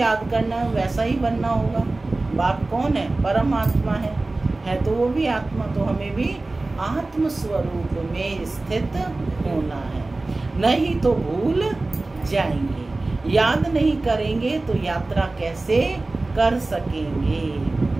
करना है वैसा ही बनना होगा। बाप कौन है? परमात्मा है तो वो भी आत्मा। तो हमें भी आत्म स्वरूप में स्थित होना है, नहीं तो भूल जाएंगे। याद नहीं करेंगे तो यात्रा कैसे कर सकेंगे?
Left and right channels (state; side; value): quieter; left; 3.1 dB